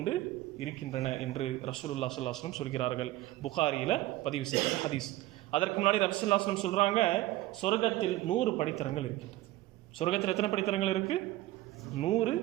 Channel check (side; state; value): left; quieter; 16.5 dB